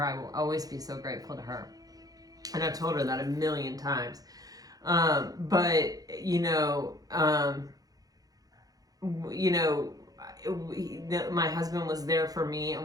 I will always be so grateful to her. And I've told her that a million times. But, my husband was there for me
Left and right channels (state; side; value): late; left; 0.18 ms